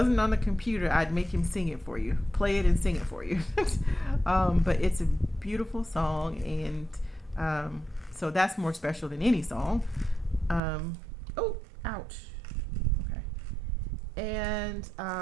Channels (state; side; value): drops out; left; at 10.6 s